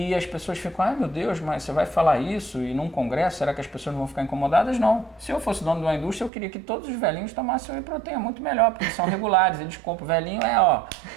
as pessoas ficam, ai meu Deus, mas você vai falar isso e num congresso, será que as pessoas não vão ficar incomodadas? Não. Se eu fosse dono de uma indústria, eu queria que todos os velhinhos tomassem whey protein, é muito melhor, porque eles são regulares, eles compram. O velhinho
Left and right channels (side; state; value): left; drops out; at 6.3 s